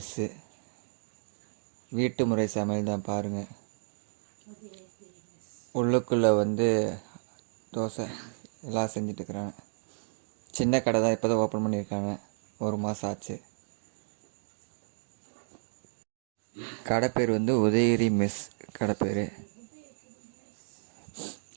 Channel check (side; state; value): left; silent; digital silence